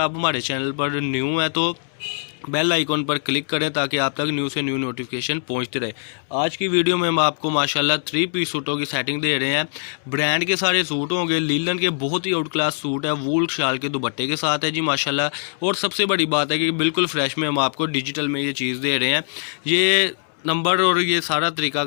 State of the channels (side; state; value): right; silent; 64 dB below the other